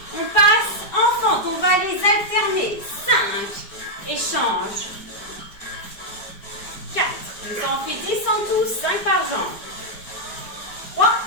On passe en fente, on va les alterner. 5 et change. 4, ça en fait 10 en tout, 5 par jambe. 3,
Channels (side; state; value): right; late; 4.9 ms